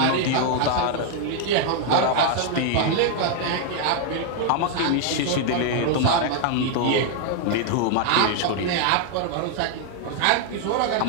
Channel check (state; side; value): different; both; correlation 0.00